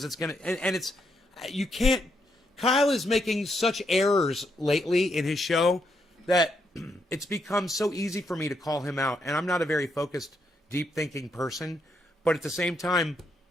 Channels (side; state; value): both; normal; correlation 0.78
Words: It's going to, and it's, you can't, Kyle is making such errors lately in his show that it's become so easy for me to call him out. And I'm not a very focused, deep thinking person, but at the same time,